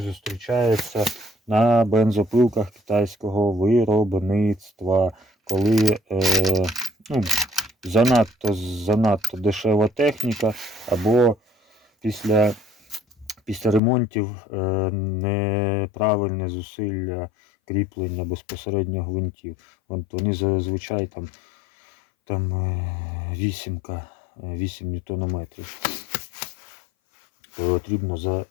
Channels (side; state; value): right; drops out; at 13.8 s